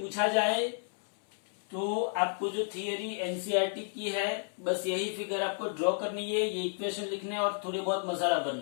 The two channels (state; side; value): silent; right; 57 dB below the other